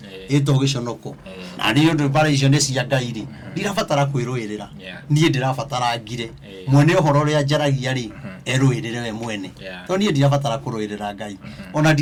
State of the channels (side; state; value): both; identical; correlation 1.00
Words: ito giconoko na ni undu bara icio ni cia Ngai ri ndirabatara kwiruirira nie ndirabatara ngire mwene uhoro ria njaragia ri eruirire we mwene to nie ndirabatara kuruirira Ngai ona